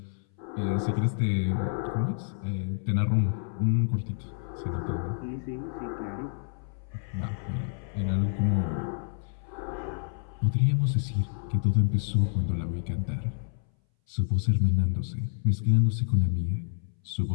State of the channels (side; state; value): right; silent; 59 dB below the other